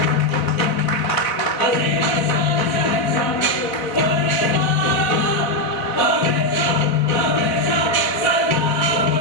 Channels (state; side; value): late; right; 3.8 ms